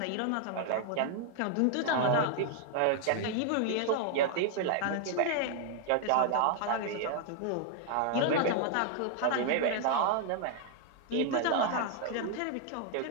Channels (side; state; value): both; different; correlation 0.00